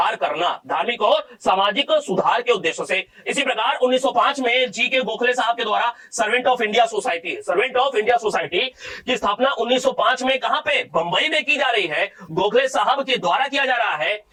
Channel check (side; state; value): both; identical; correlation 1.00